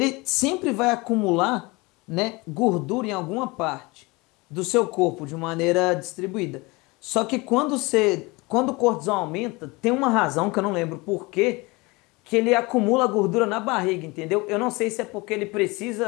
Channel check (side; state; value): right; quieter; 24.6 dB